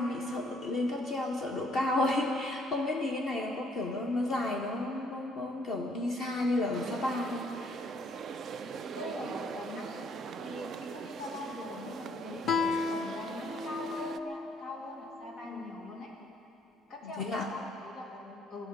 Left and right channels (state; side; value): normal; both; correlation 0.65